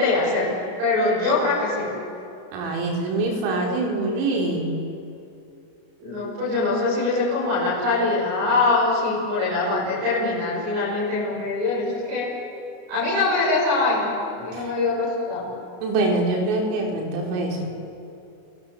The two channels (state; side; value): late; left; 33 ms